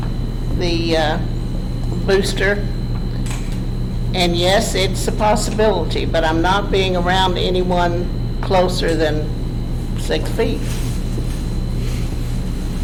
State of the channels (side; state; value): both; identical; correlation 1.00